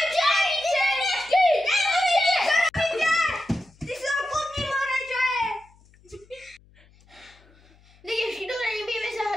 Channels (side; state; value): left; noise; hum, 29 dB below the sound